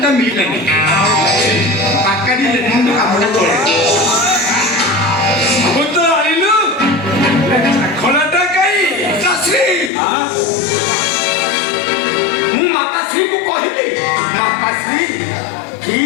ମିଳିଲାନି ପାକାଡ଼ି ଲେଖନ୍ତୁ କାମଟା ଚଳେ ସବୁ ତ ଆଣିଲୁ ଖୋଲାଟା କାଇଁ ପିତାଶ୍ରୀ ମୁଁ ମାତାଶ୍ରୀଙ୍କୁ କହିଲି ମାତାଶ୍ରୀ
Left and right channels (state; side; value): drops out; right; at 9.9 s